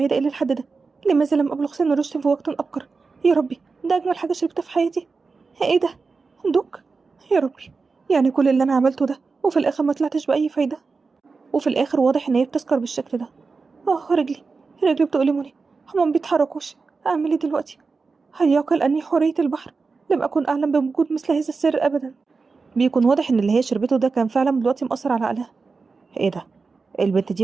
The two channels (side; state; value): left; quieter; 4.4 dB